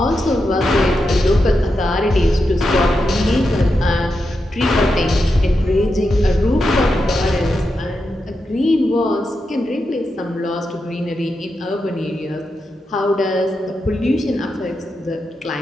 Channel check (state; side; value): normal; both; correlation 0.87